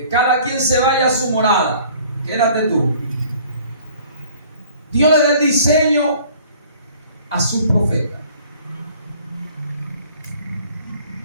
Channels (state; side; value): inverted; both; correlation -0.53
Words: cada quien se vaya a su morada. Quédate tú. Dios le da el diseño a su profeta.